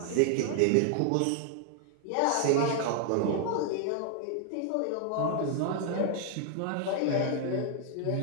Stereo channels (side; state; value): both; different; correlation 0.00